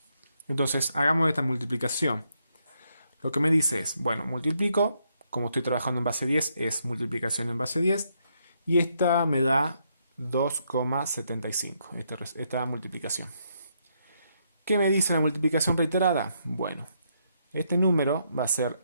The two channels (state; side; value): inverted; both; correlation -0.76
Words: Entonces, hagamos esta multiplicación. Lo que me dice es, bueno, multiplico, como estoy trabajando en base 10, es multiplicación en base 10, y esta me da 2,75, esta multiplicación. ¿Qué me dice la multiplicación reiterada? Bueno, este número va a ser